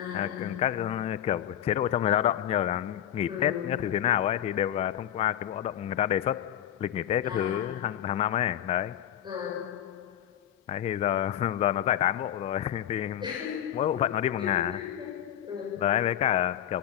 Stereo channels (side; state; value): right; quieter; 10.9 dB